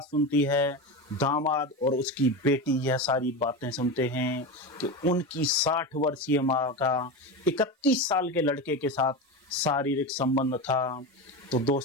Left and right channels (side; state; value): both; normal; correlation 0.21